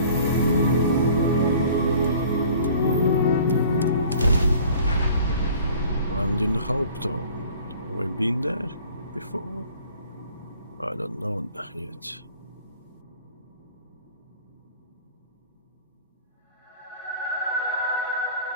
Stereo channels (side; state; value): both; inverted; correlation -0.49